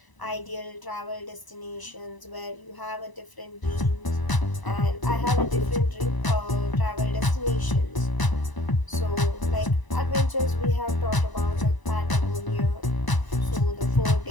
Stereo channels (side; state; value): right; late; 1.0 ms